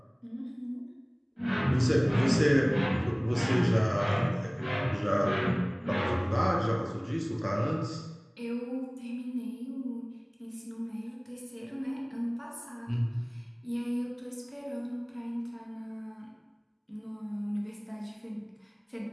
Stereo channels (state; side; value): identical; both; correlation 1.00